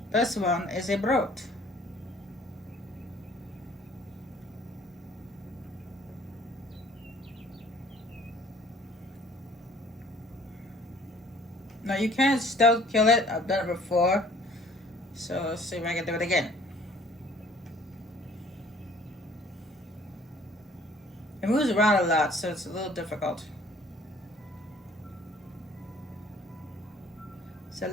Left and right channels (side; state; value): both; normal; correlation 0.56